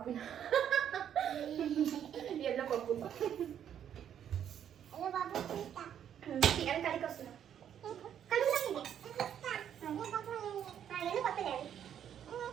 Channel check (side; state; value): left; quieter; 9.4 dB